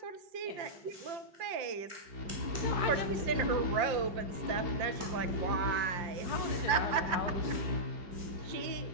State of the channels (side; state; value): left; late; 5.8 ms